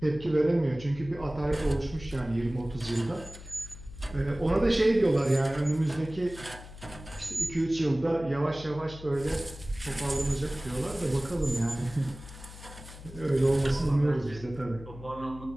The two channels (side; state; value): left; noise; hum, 15 dB below the sound